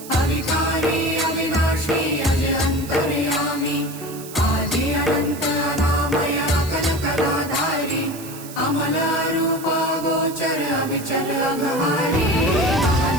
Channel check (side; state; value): right; noise; hiss, 15 dB below the sound